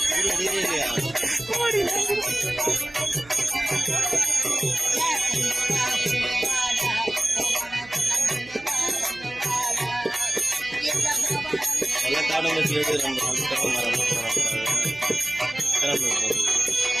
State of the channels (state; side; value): noise; right; hum, 24 dB below the sound